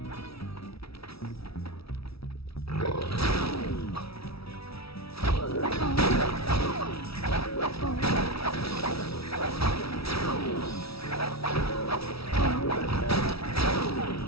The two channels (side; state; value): right; late; 0.76 ms